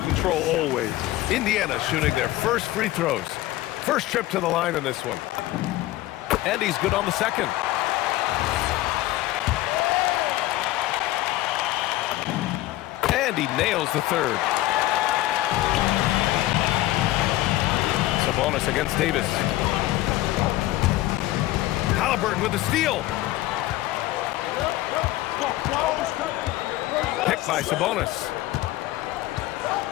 control always. Indiana shooting their first free throws. First trip to the line in this one. And he's good on the second. And he nails the third. Sabonis against Davis. Halliburton with the steal. Picked by Sabonis.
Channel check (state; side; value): quieter; right; 16.4 dB